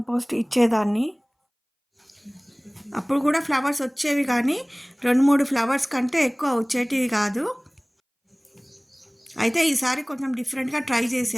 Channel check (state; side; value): identical; both; correlation 1.00